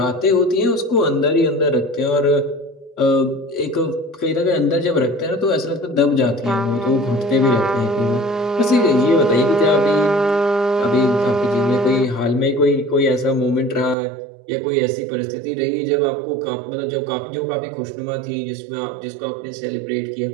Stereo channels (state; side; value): drops out; left; at 14.0 s